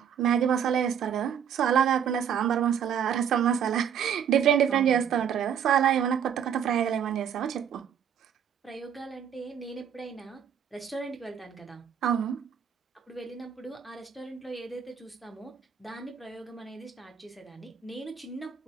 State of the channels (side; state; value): left; quieter; 8.4 dB